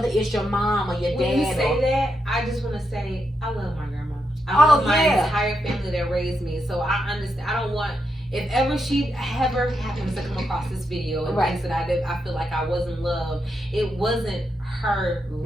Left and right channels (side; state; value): both; normal; correlation 0.83